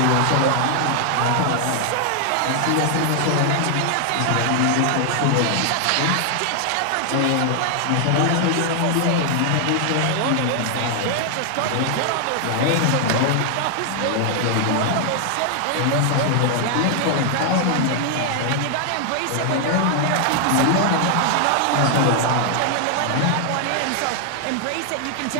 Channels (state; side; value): different; both; correlation 0.00